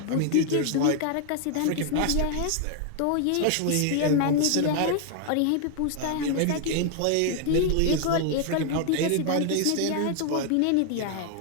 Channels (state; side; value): different; both; correlation 0.00